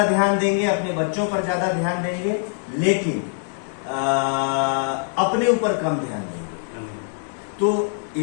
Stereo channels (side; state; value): right; silent; 63 dB below the other